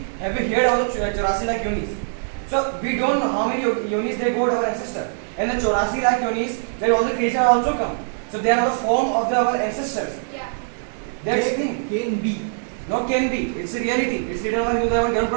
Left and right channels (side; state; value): left; silent; 64 dB below the other